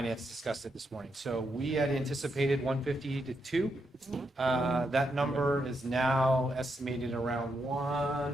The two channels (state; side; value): normal; both; correlation 0.81